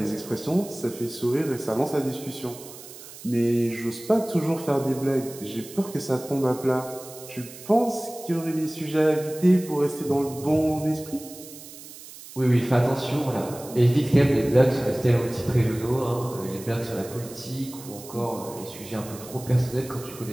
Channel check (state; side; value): noise; right; hiss, 16 dB below the sound